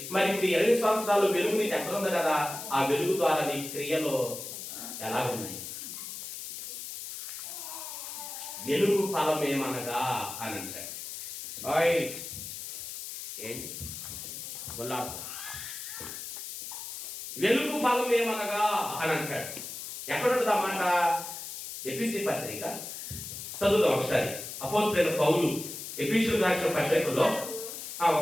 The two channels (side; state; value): left; noise; hiss, 8 dB below the sound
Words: మరి ఇప్పుడు 20 సంవత్సరాలు వెలుగు నీది ఎక్కడ ఉంది కదా, ఆ వెలుగు ద్వారా నీ క్రియలు ఎలా ఉన్నాయి? వెలుగు ఫలం ఏమనగా అని అంటాడు. ఏంటి వెలుగు ఫలం ఏమనగా అని అంటాడు. ఎక్కడుంటుంది ఆ మాట? ఎఫెసీ పత్రిక చదువుదాం ఒకసారి. అపోస్తలుడైన పౌలు ఎఫెసీయులకు రాసిన పత్రికలో